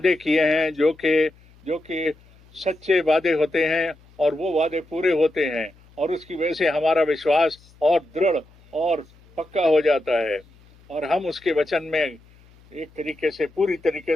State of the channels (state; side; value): noise; left; hum, 28 dB below the sound